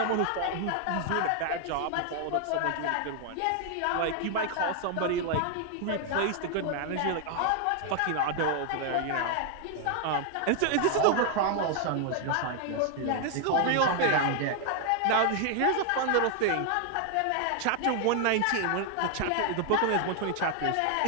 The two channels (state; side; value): different; both; correlation 0.00